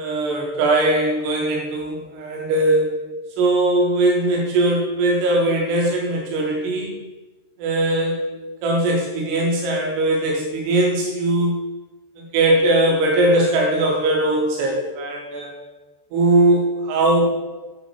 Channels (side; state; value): left; late; 13 ms